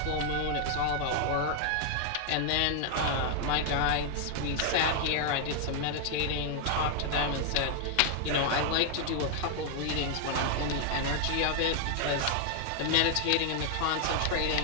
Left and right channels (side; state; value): both; different; correlation 0.00